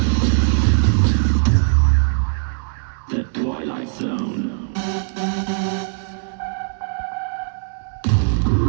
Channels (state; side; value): silent; left; 64 dB below the other